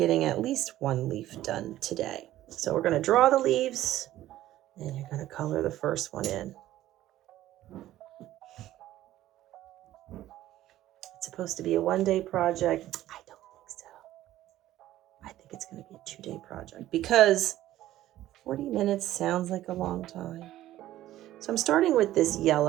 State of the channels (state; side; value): quieter; left; 14.2 dB